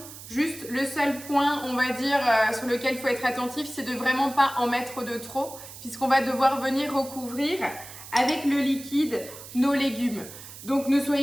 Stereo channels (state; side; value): noise; right; hiss, 15 dB below the sound